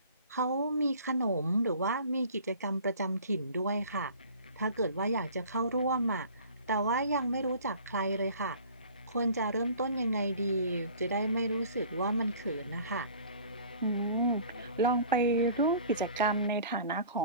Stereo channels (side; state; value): both; inverted; correlation -0.47